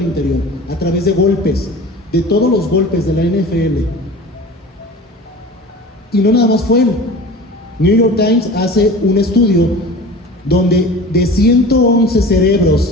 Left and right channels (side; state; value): both; normal; correlation 0.37